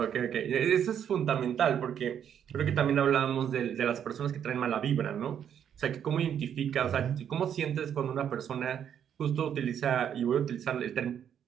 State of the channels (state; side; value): quieter; left; 9.0 dB